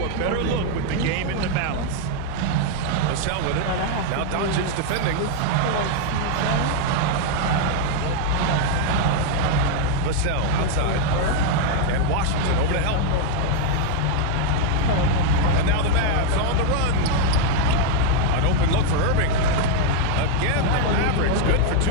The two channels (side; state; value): both; different; correlation 0.00